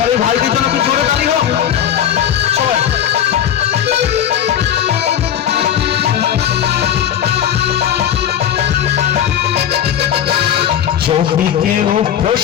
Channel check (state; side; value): quieter; right; 9.9 dB